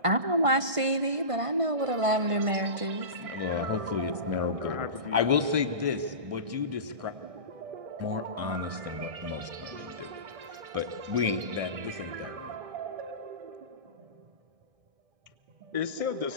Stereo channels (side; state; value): left; late; 1.6 ms